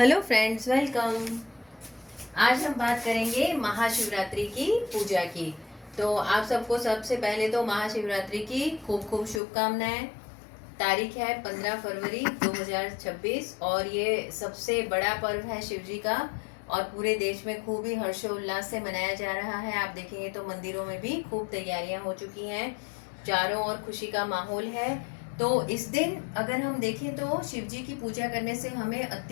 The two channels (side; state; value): right; drops out; at 9.4 s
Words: friends, welcome. आज हम बात करेंगे महाशिवरात्रि की पूजा की। तो आप सबको सबसे पहले तो महाशिवरात्रि की खूब खूब शुभकामनाएं। तारीख है 15 फरवरी 2026 और ये सबसे बड़ा पर्व है शिव जी का और पूरे देश में खूब ही हर्षोल्लास से मनाया जा रहा है। आप देखेंगे तो मंदिरों में भी खूब तैयारियां हो चुकी हैं, चारों ओर खुशी का माहौल है। तो इस दिन अगर हम देखें तो शिव जी की पूजा करने से हमें